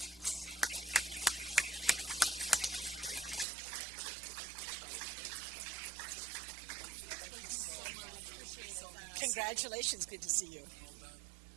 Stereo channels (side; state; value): left; drops out; at 3.5 s